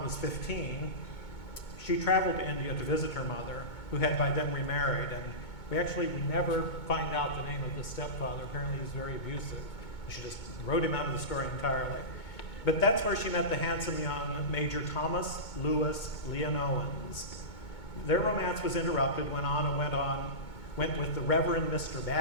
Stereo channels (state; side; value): late; right; 2.2 ms